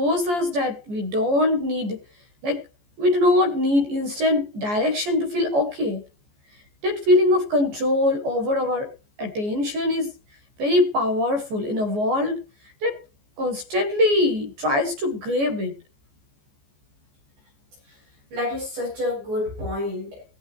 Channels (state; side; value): late; left; 14 ms